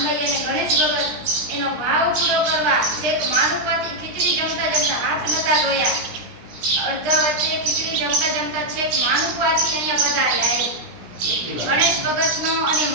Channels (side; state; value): left; late; 17 ms